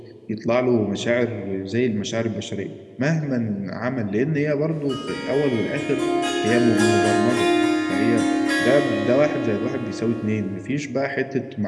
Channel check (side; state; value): both; identical; correlation 1.00